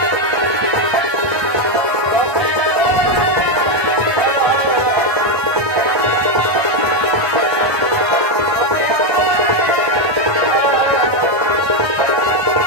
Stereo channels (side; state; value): left; late; 1.2 ms